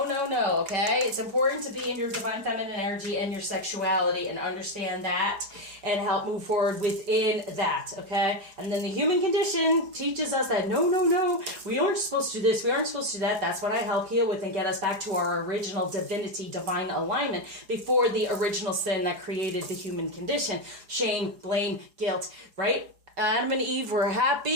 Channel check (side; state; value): left; late; 4.8 ms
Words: It's important to be in your divine feminine energy and your sexuality and understand that and help move forward within that, okay? And then the human condition teaches us that no, we aren't supposed to do this, we aren't supposed to do that. That's what I help heal with and get us back to our original divinity, divine alignment before the original sin that created the human condition. Shame, blame, guilt, right? Adam and Eve were